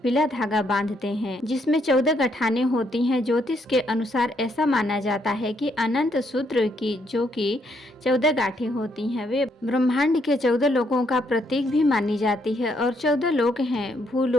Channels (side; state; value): both; normal; correlation 0.73